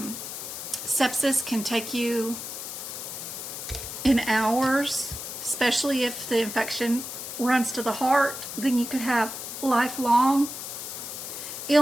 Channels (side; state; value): left; noise; hiss, 8 dB below the sound